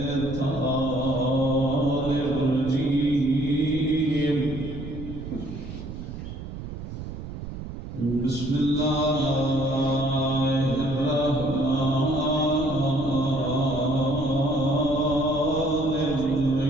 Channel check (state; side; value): noise; right; rumble, 9 dB below the sound